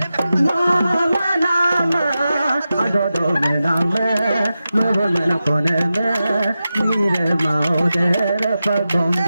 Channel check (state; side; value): inverted; both; correlation -0.92